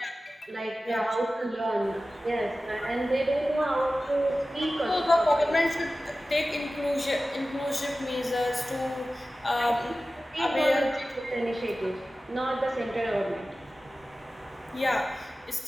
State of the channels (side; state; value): both; normal; correlation 0.95